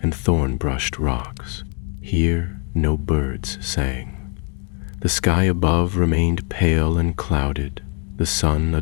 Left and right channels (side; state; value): right; quieter; 37.7 dB